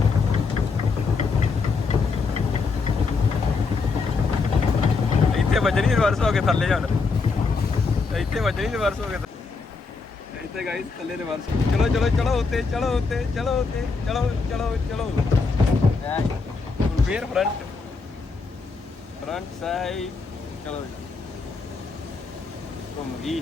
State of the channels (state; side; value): quieter; right; 4.5 dB